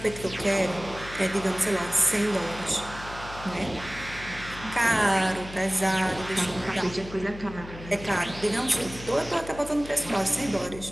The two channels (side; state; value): left; noise; hum, 14 dB below the sound